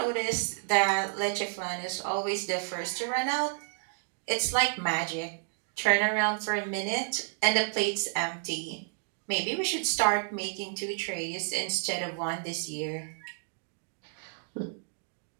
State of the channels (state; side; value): silent; left; digital silence